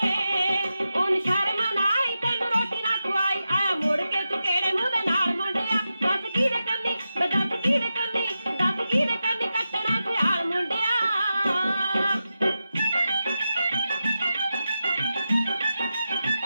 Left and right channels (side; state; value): both; inverted; correlation -0.90